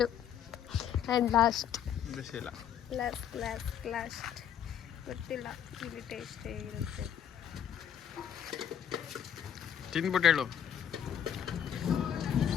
ಗೊತ್ತಿಲ್ಲ, ಇಲ್ಲಿ ಟೇಸ್ಟ್ ಹೇಗಿರುತ್ತೆ ತಿಂದ್ಬಿಟ್ಟು ಹೇಳು.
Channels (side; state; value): right; quieter; 9.3 dB